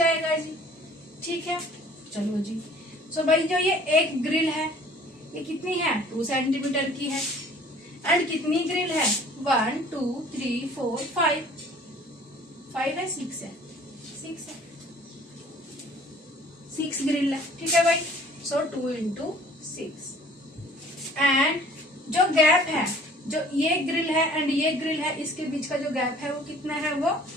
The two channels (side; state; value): both; normal; correlation 0.52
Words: जी। ठीक है, चलो जी। सो भाई जो ये एक ग्रिल है, ये कितनी है, 2 सेंटीमीटर की है। एंड कितनी ग्रिल है, 1 2 3 4 5 है, 6 है, 6 ग्रिल है। ठीक है भाई, सो 2 into 6। एंड जो गैप है, जो ये ग्रिल है एंड ये ग्रिल है, इसके बीच का जो गैप है वो कितना है, वो